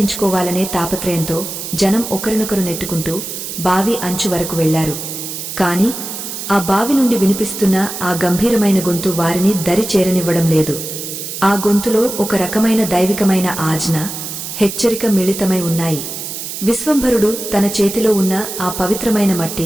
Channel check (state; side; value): noise; right; hiss, 7 dB below the sound